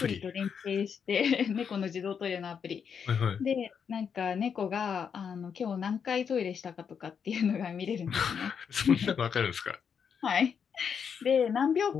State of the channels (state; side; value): quieter; right; 7.0 dB